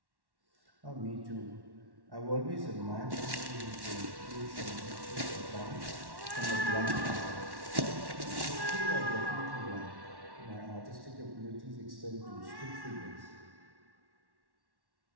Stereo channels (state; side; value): late; left; 1.1 ms